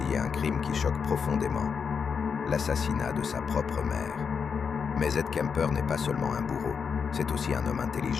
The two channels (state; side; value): quieter; right; 6.2 dB